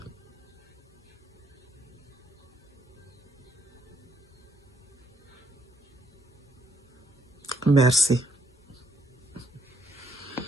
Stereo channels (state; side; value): normal; both; correlation 0.72